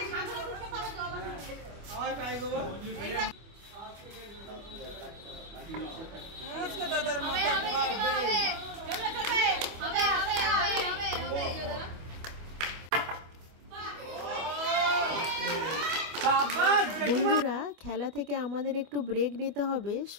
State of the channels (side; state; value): left; late; 25 ms